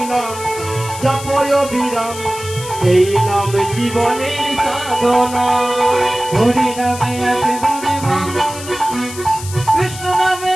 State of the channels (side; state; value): left; noise; hiss, 12 dB below the sound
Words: নাম জপয় বিরাম এই নাম জীবনের সাধনা। হরি নামে একেবারে ভালো না, কৃষ্ণ নামে